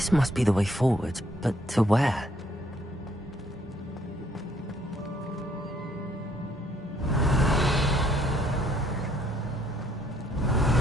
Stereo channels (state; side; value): normal; both; correlation 0.67